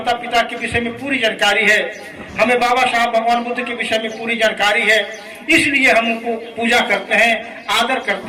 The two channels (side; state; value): both; identical; correlation 1.00